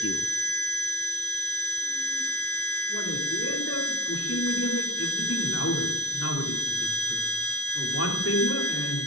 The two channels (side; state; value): right; late; 0.67 ms